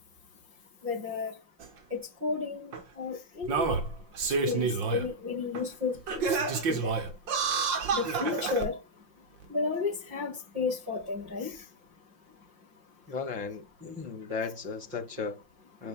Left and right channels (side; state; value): left; late; 5.7 ms